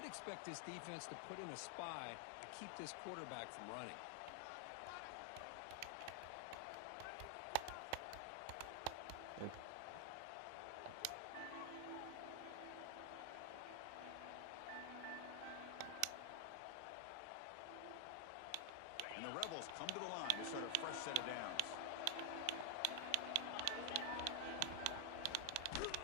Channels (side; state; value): both; different; correlation 0.00